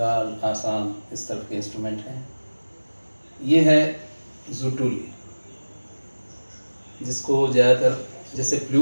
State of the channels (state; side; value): inverted; both; correlation -1.00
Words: आसाम इस तरफ के इंस्ट्रूमेंट हैं। ये है ज़ुटुली, जिसको ज़्यादातर जैसे